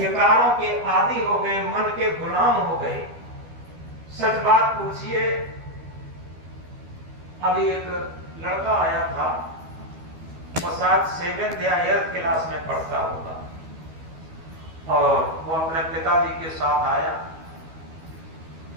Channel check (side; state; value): left; late; 12 ms